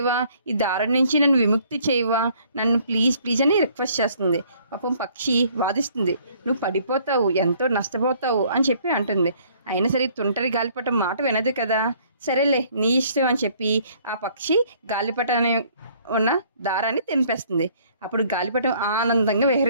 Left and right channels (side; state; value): both; inverted; correlation -0.60